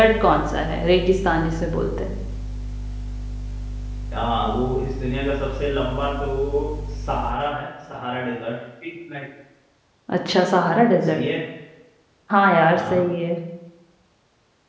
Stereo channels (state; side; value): identical; both; correlation 1.00